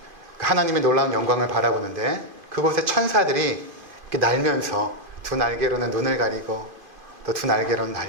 하나님의 놀라운 영광을 바라보는데 그곳에 천사들이 이렇게 날면서 두 날개로는 눈을 가리고 또 두 날개로는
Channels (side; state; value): left; late; 2.4 ms